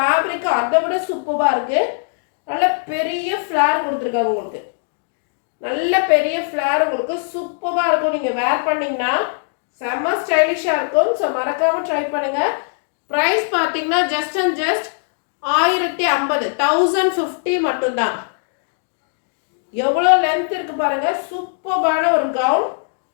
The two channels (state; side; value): silent; right; digital silence